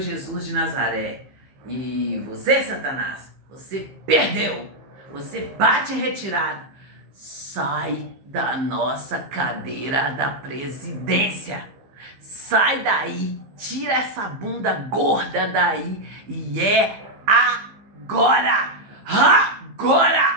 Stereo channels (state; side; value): late; left; 15 ms